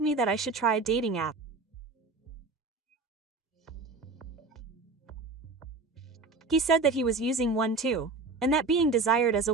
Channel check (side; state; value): left; quieter; 3.7 dB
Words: that I should try a dating app. He said that he was using one too, and that being desired as a